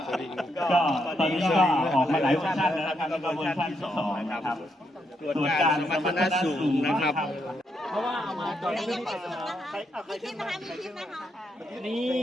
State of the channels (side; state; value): both; normal; correlation 0.79